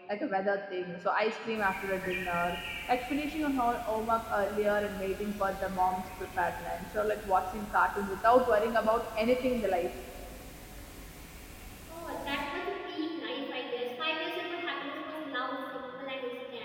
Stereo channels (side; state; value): both; identical; correlation 1.00